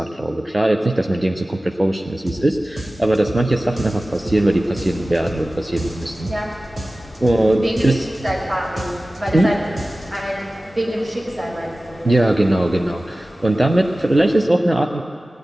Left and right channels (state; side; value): normal; both; correlation 0.96